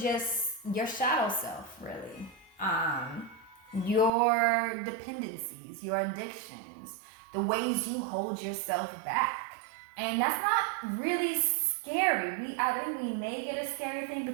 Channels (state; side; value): drops out; left; at 4.1 s